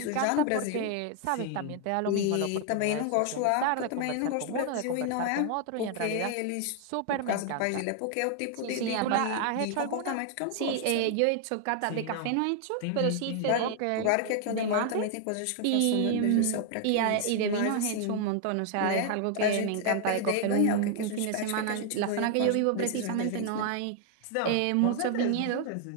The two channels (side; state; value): both; different; correlation 0.00